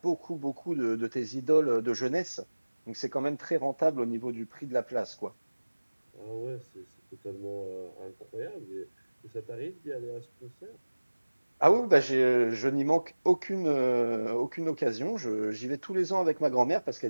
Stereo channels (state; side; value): inverted; both; correlation -1.00